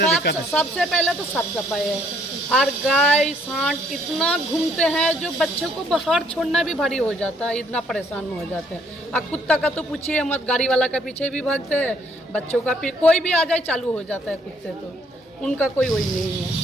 दिक्कत है। सबसे पहले तो साफ सफाई है, और गाय सांड इतना घूमते हैं जो बच्चों को बाहर छोड़ना भी भारी हो जाता है, इतना परेशान हो जाते हैं। और कुत्ता का तो पूछिए मत, गाड़ी वाला का पीछे भी भागते हैं, बच्चों का कोई भी आ जाए चालू हो जाता है कुत्ते, तो उनका कोई वही नहीं है।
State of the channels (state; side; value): normal; both; correlation 0.66